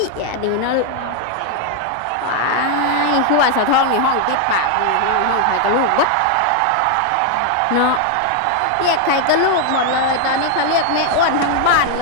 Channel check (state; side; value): different; both; correlation 0.01